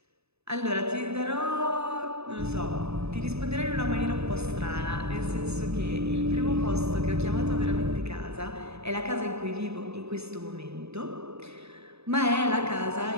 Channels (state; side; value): late; left; 0.79 ms